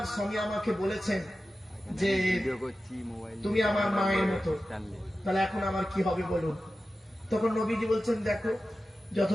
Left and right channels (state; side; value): normal; both; correlation 0.94